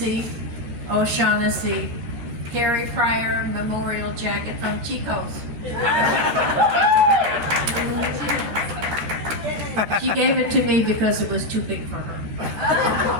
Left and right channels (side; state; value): left; late; 13 ms